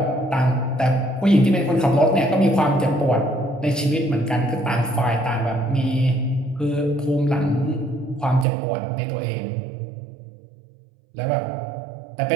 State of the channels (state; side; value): drops out; left; at 8.5 s